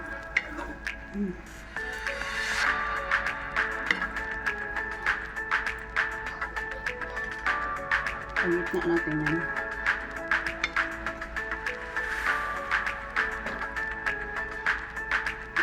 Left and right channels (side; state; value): both; identical; correlation 1.00